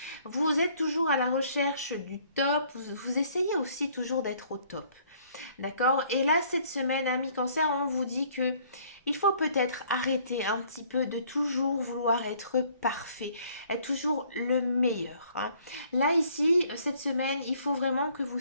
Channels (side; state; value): both; inverted; correlation -0.60